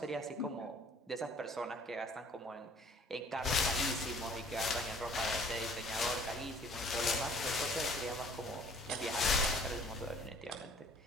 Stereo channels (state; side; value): normal; both; correlation 0.55